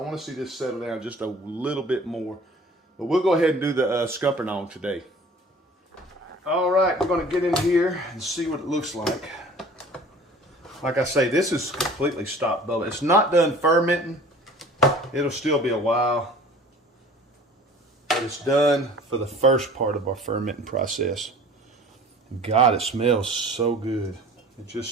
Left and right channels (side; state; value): both; normal; correlation 0.46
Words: see this settle down just a little bit more. But we'll go ahead and do the scuppernong today. All right, we're gonna get in here and see what it looks like. Like I say, this is completely stopped bubbling. It's not done fermenting. It'll still be a while. But it's done for the first part of our fermenting process. God, it smells so good. It